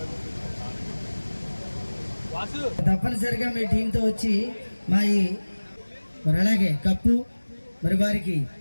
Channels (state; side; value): inverted; both; correlation -1.00